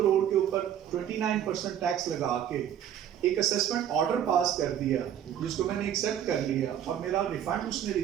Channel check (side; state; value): left; quieter; 10.0 dB